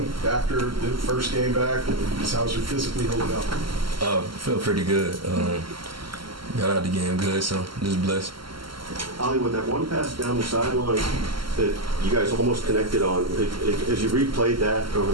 after the first game back? Just how's your physically holding up? Feel pretty good. Got out the game good, so just blessed. Ollie, with that one pass down the sideline that you guys almost connected on, as you replayed that over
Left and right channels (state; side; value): late; left; 0.74 ms